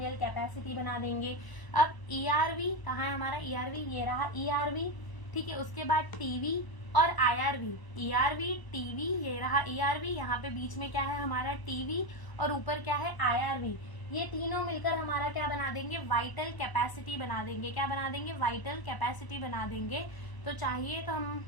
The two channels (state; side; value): late; right; 1.0 ms